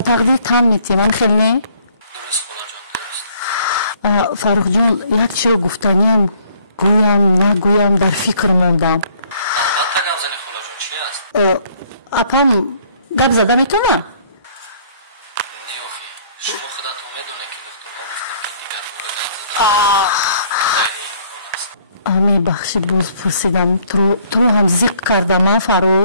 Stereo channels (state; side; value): inverted; both; correlation -0.61